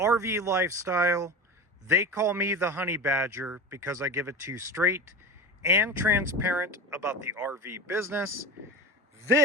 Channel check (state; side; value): normal; both; correlation 0.28